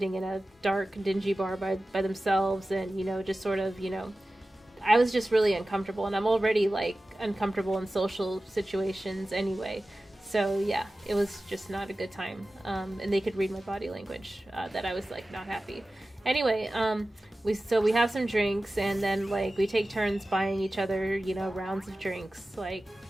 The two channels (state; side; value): normal; both; correlation 0.96